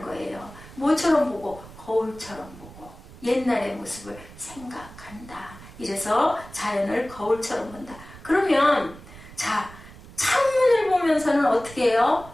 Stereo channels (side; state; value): right; noise; rumble, 18 dB below the sound